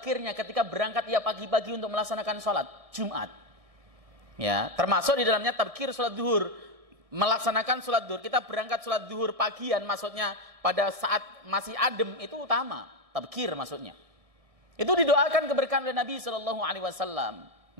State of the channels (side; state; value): left; late; 1.6 ms